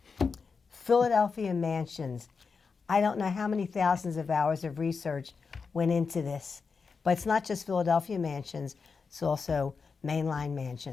Philadephia Mansions. I don't know how many thousands of hours of research went into this. But it's not just Philadephia Mansions, it's also mainline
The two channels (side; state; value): right; quieter; 5.1 dB